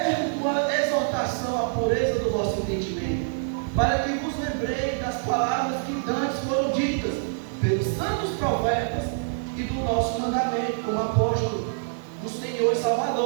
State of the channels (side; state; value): left; silent; 61 dB below the other